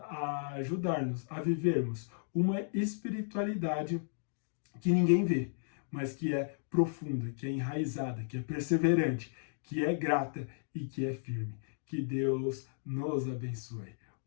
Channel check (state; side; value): silent; right; digital silence